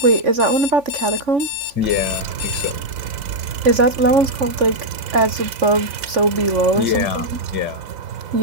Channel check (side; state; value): left; late; 3.5 ms